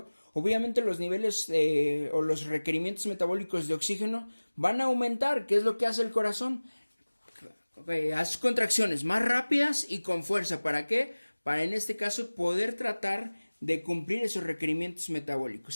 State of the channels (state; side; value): inverted; both; correlation -1.00